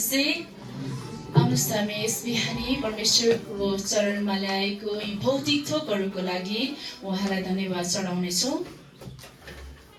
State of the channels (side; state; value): both; identical; correlation 1.00